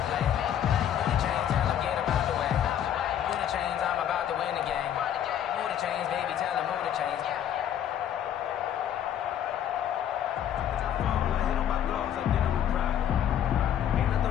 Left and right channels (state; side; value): quieter; right; 10.1 dB